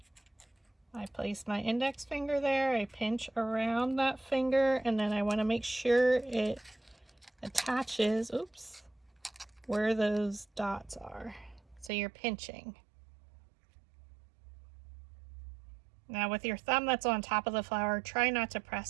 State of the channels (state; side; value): drops out; left; at 11.9 s